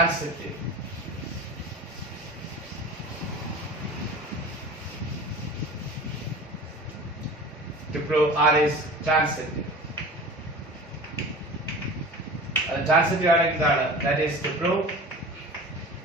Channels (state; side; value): normal; both; correlation 0.37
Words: To prove R is transitive. Transitive ആണെങ്കിൽ എന്താണ്? That is to prove